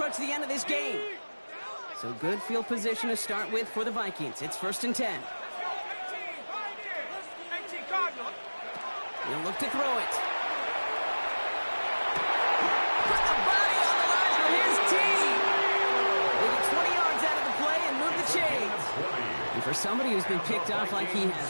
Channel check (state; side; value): inverted; both; correlation -1.00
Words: the end of this game. So good field position to start with for the Vikings. It's 1st and 10. He'll look to throw it. put the body on the line for his team. They get 20 yards out of the play and move the chains. And for somebody who's been picked off like he